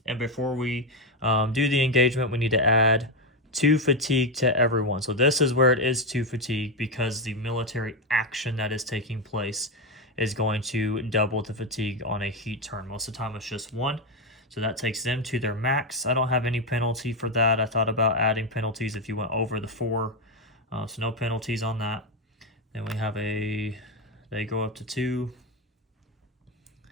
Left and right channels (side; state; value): both; normal; correlation 0.08